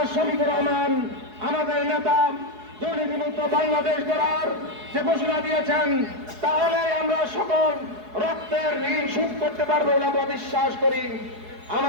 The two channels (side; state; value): left; late; 4.7 ms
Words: শফিকুর রহমান আমাদের নেতা দুর্নীতিমুক্ত বাংলাদেশ গড়ার যে ঘোষণা দিয়েছেন, তাহলে আমরা সকল রক্তের ঋণ শোধ করতে পারবো বলে আমরা বিশ্বাস করি।